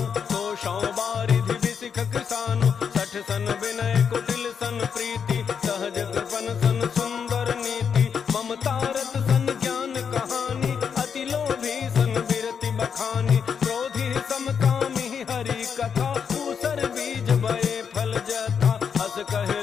कोशौ बारिधि बिसिख किसानु, 60 सन विनय कुटिल सन प्रीति, सहज कृपन सन सुंदर नीति, ममता रत सन ज्ञान कहानी, अति लोभी सन बिरति बखानी, क्रोधी समकामी हरि कथा, ऊसर बीज बये फल जथा, हस कहे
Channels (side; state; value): right; quieter; 6.9 dB